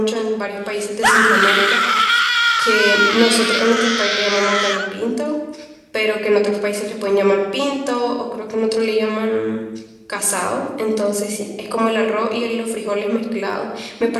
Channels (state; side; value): identical; both; correlation 1.00